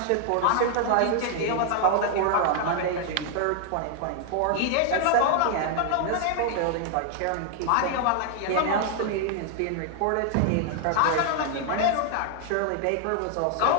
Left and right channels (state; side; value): different; both; correlation 0.00